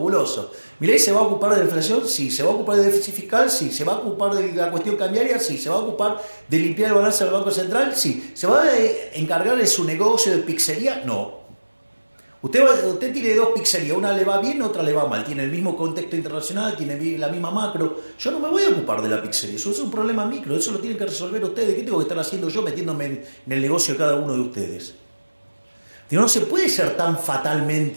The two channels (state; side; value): inverted; both; correlation -1.00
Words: Milei se va a ocupar de la inflación, sí. Se va a ocupar del déficit fiscal, sí. Se va a ocupar de la cuestión cambiaria, sí. Se va a ocupar de limpiar el balance del Banco Central, sí. ¿Se va a encargar de su negocio de pizzería? No. Usted tiene 2 pizzerías, una le va bien, otra le va mal. Tiene el mismo contexto internacional, tiene la misma macro. Yo no me voy a ocupar de la pizzería, eso es un problema micro, eso lo tienen que resolver ustedes. ¿Qué tengo que estar haciendo yo metiéndome en el negocio de cada uno de ustedes? No se puede ser tan